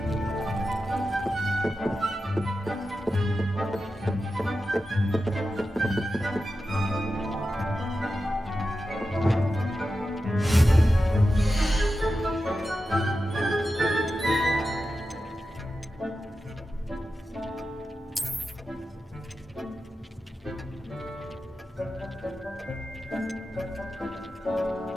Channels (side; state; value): both; normal; correlation 0.91